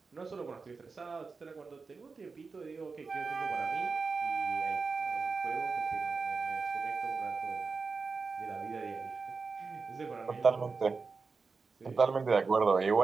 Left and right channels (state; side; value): quieter; left; 4.6 dB